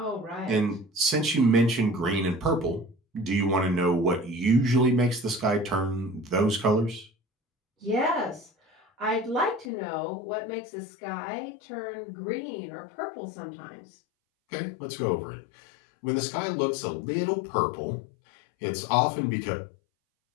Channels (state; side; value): drops out; right; at 9.7 s